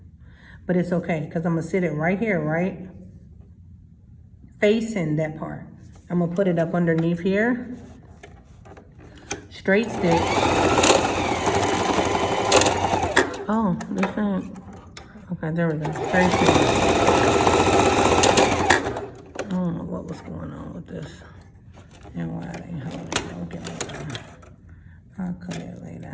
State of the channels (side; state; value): both; identical; correlation 1.00